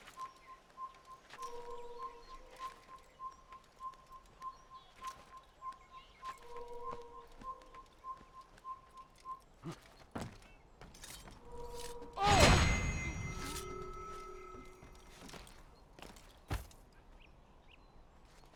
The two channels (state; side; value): identical; both; correlation 1.00